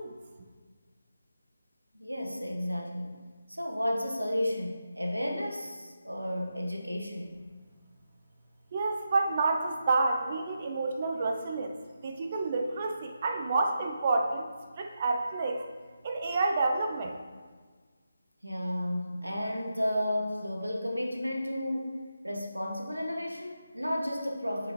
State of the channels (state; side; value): inverted; both; correlation -0.87